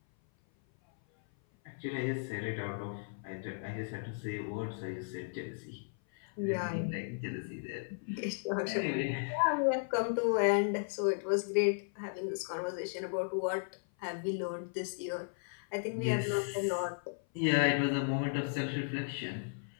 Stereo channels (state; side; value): silent; right; 54 dB below the other